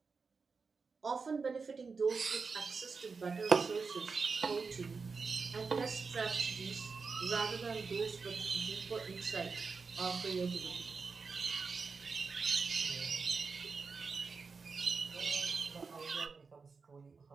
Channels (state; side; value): quieter; left; 4.8 dB